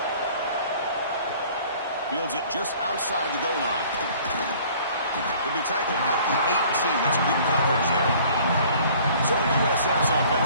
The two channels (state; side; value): inverted; both; correlation -0.52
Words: Fields it just outside the goal line. He'll be tackled at the 18. That's good coverage there. So USF's